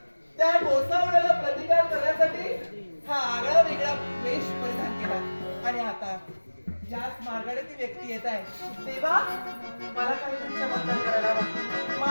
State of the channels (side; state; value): both; inverted; correlation -1.00